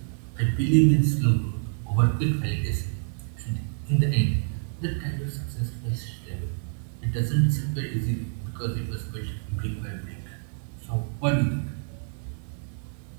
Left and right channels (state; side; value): silent; left; digital silence